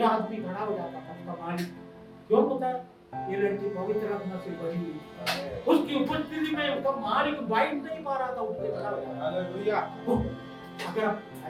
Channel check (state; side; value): identical; both; correlation 1.00